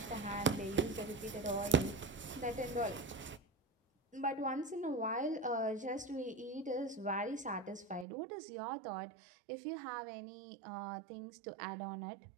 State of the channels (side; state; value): left; drops out; at 8.1 s